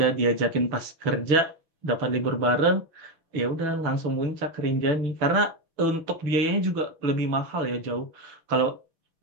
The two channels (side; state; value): left; late; 6.1 ms